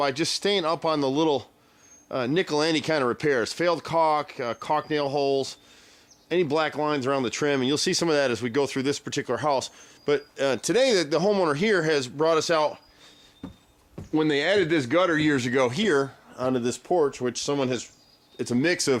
just staying up on the little nickel-ante kind of repairs. Failed caulk, caulk nail holes, any black lines around the trim, and you'll see some of that as we go through this particular house. But today the homeowner here has brought us out when they added this gutter years ago here onto this porch, which someone has, it's a mix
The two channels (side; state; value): both; identical; correlation 1.00